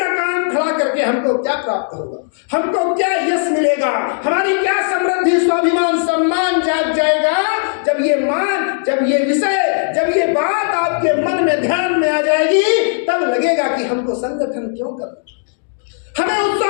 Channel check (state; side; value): silent; right; digital silence